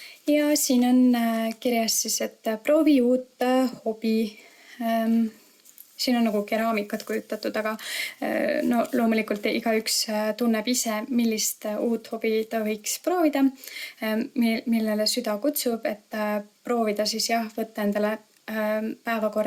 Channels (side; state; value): both; identical; correlation 1.00